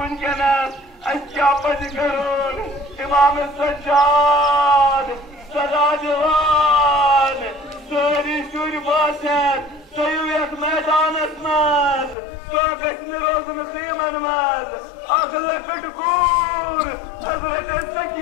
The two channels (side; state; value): right; drops out; at 12.2 s